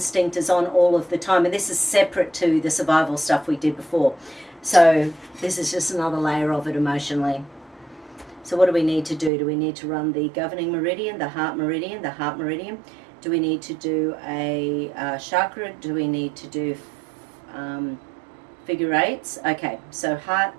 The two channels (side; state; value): left; drops out; at 9.3 s